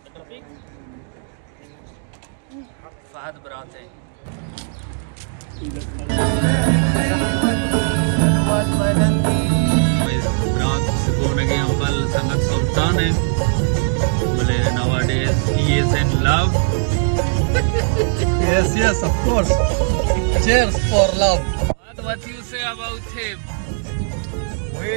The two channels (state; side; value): silent; left; digital silence